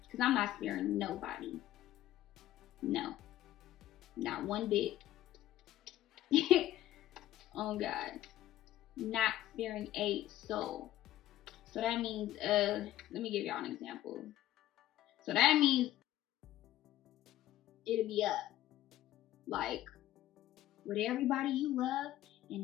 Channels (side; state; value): right; quieter; 13.8 dB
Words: Because I'm not sparing nobody. No. Not one bit. Oh God. Not sparing a soul. So that means, let me give y'all an example. So that means it'll be up. Like, with everybody you love